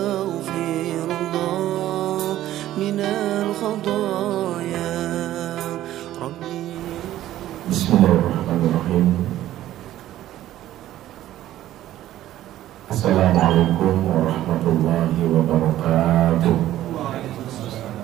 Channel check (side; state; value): left; quieter; 13.6 dB